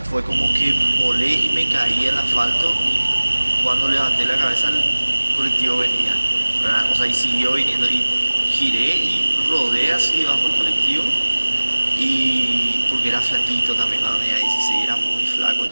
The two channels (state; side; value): inverted; both; correlation -1.00